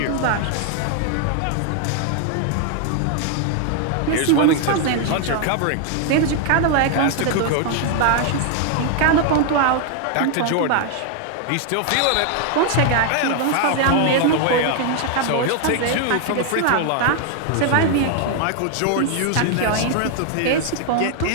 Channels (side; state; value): both; different; correlation 0.00